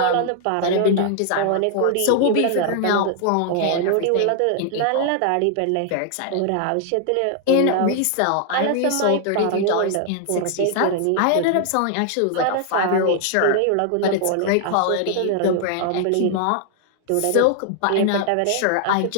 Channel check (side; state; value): both; different; correlation 0.00